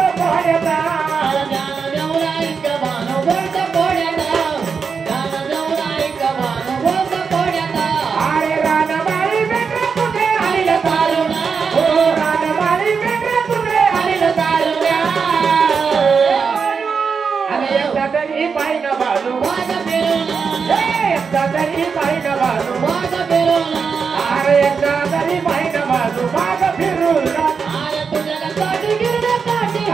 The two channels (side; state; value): left; quieter; 5.7 dB